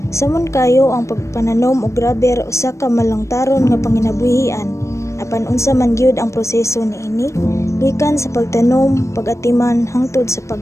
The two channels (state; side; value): late; right; 0.14 ms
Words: Samon kayo ang pagpananom og rubber usa ka malangtaron nga panginabuhian, apan unsa man gyud ang proseso niini, gikan sa pagtanom, pag-atiman hangtod sa